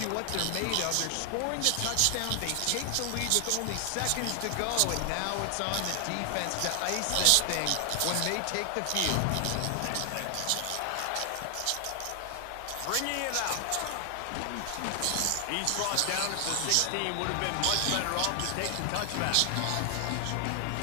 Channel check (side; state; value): both; different; correlation 0.00